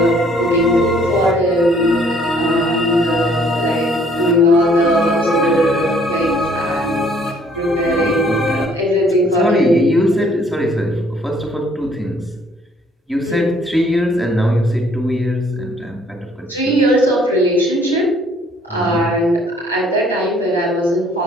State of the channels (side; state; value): both; normal; correlation 0.61